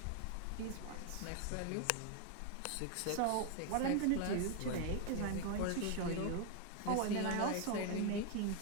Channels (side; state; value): both; different; correlation 0.01